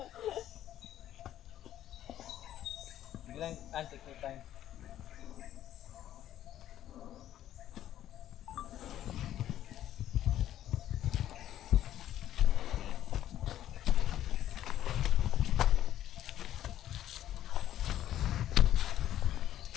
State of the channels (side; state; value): right; quieter; 12.1 dB